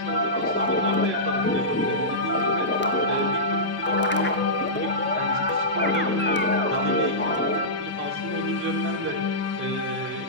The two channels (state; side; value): normal; both; correlation -0.16